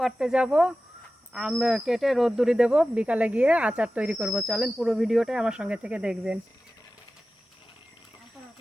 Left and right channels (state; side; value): normal; both; correlation 0.95